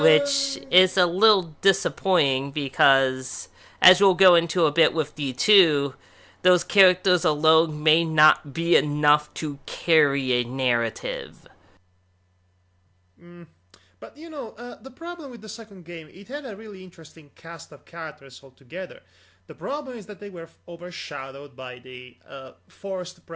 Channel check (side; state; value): both; identical; correlation 1.00